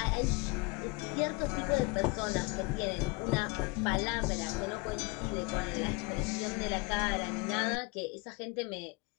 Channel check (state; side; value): quieter; right; 26.5 dB